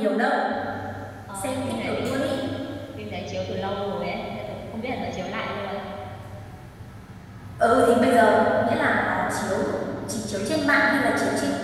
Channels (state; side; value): identical; both; correlation 1.00